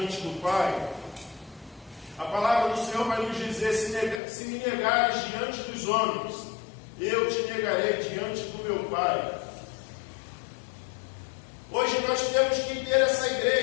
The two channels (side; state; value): right; drops out; at 4.2 s